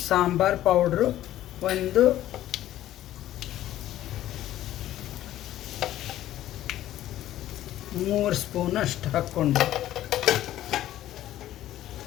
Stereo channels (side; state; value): right; quieter; 13.4 dB